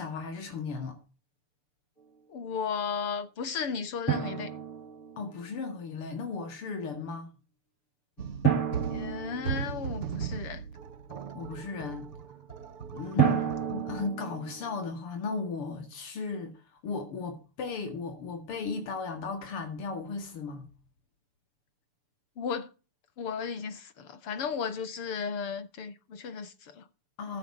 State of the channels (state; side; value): late; right; 6.8 ms